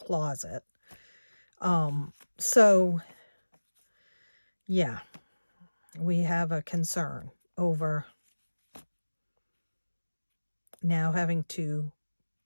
So yeah, we have a concern over now having to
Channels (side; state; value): both; inverted; correlation -1.00